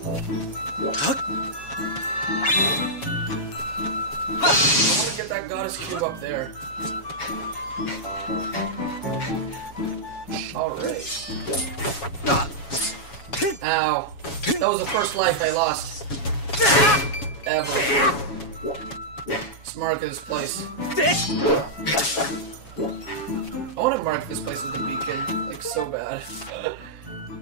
That goddess cube up there. Alright. Ow. That was the first life I lost. Ever. Let's mark this place. I want to mark this place with a beacon. Like, so bad.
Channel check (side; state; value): right; late; 7.2 ms